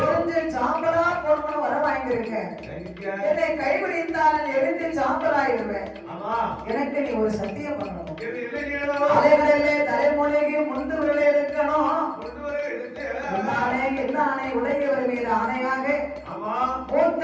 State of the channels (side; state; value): both; identical; correlation 1.00